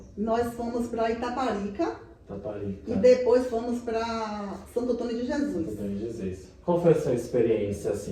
Nós fomos para Itaparica. Itaparica. E depois fomos para Santo Antônio de Jesus. Santo Antônio de Jesus. Qual foi a sua experiência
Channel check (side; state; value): both; identical; correlation 1.00